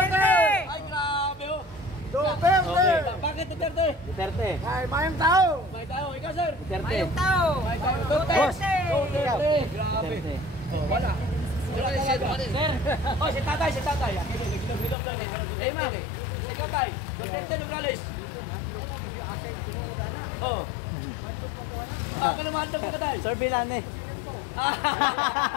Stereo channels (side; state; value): right; drops out; at 15.0 s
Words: Ay, grabe, oh. Duterte! Okay. Bakit Duterte? Duterte. Ay, mayang tao. May tao, ikaw, sir. Duterte. May tao. Duterte! Duterte! Grabe. Oh, wala. Sir. Oh, si tatay. Nagilog daw ni. Hey, ma'am. Ikaw, tay. Duterte, Nograles. Oh. Kalamahan daw ka, tay. Sir Bilane.